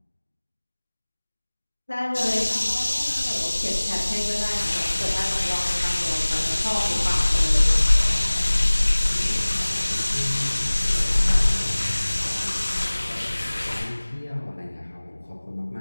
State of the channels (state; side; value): inverted; both; correlation -1.00